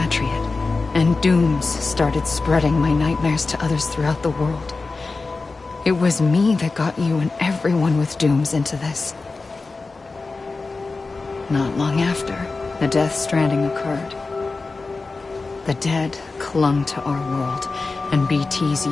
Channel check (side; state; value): right; quieter; 3.8 dB